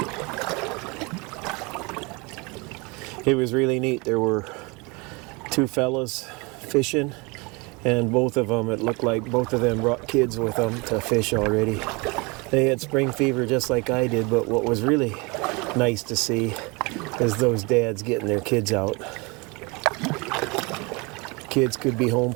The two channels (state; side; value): quieter; left; 27.7 dB